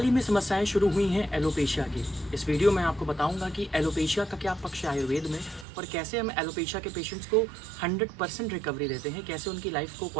ही में समस्याएं शुरू हुई हैं एलोपेशिया की। इस वीडियो में आपको बताऊंगा कि एलोपेशिया का क्या पक्ष है आयुर्वेद में और कैसे हम एलोपेशिया के पेशेंट्स को 100% रिकवरी देते हैं, कैसे उनकी लाइफ को,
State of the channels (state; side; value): drops out; left; at 5.7 s